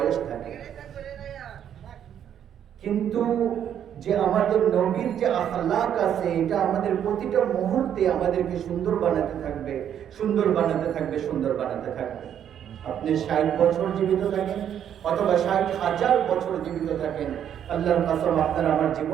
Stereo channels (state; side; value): quieter; left; 9.5 dB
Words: থাকে। কিন্তু যে আমাদের নবীর যে আখলাক আছে, এটা আমাদের প্রতিটা মুহূর্তে আমাদেরকে সুন্দর বানাতে থাকবে, সুন্দর বানাতে থাকবে, সুন্দর বানাতে থাকবে। আপনি 60 বছর জীবিত থাকেন অথবা 60,000 বছর জীবিত থাকেন, আল্লাহর কসম আপনার আমার